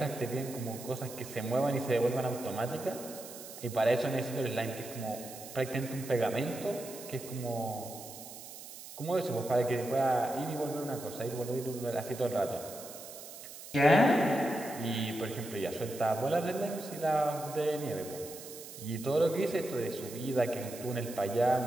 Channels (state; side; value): noise; right; hiss, 13 dB below the sound